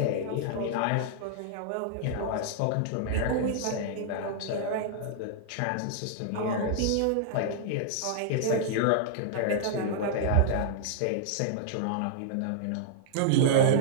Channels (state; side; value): different; both; correlation -0.01